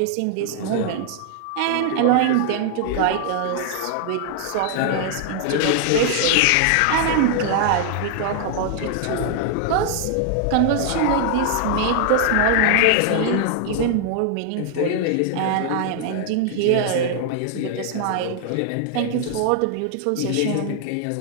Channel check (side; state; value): both; different; correlation 0.00